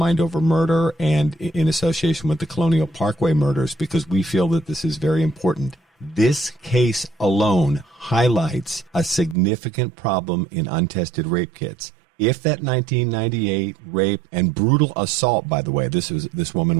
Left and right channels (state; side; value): drops out; left; at 9.3 s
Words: Over Murder and in association with the Colonial Parkway Murders, because we feel that this is very important. This case alone highlights a significant problem in untested rape kits. If that 1998 rape and brutal assault, by the way, this